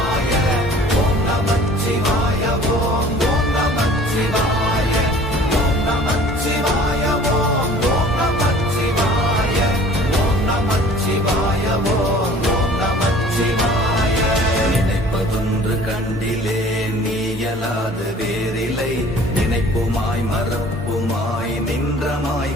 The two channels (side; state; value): both; normal; correlation 0.49